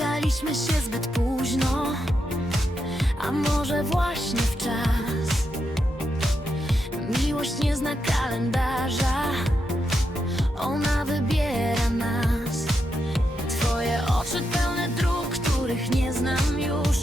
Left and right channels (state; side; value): normal; both; correlation 0.84